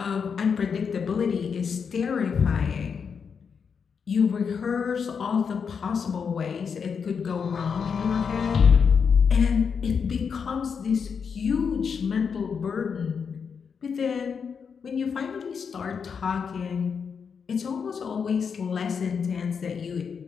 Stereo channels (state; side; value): quieter; right; 6.3 dB